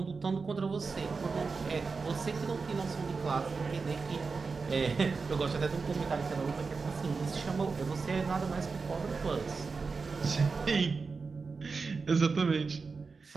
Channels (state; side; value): quieter; left; 4.6 dB